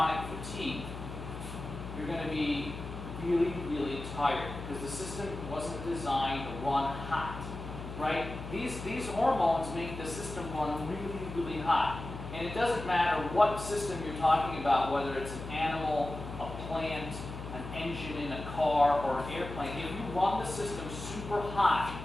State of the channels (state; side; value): noise; left; hum, 9 dB below the sound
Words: fatigue. You're going to be really, really tired because the system wasn't designed to run hot. right? These hormones make the system run really, really hot. And it doesn't matter what system you're talking about, whether it's an animal, a plant, an engine in a car, or an airplane. If you run the system super hot